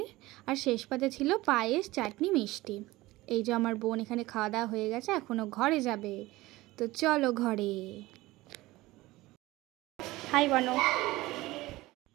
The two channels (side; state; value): left; quieter; 19.0 dB